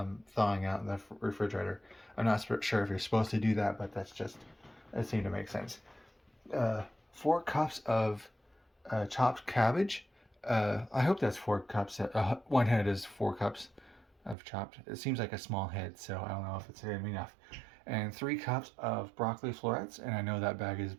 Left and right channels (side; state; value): left; drops out; at 14.4 s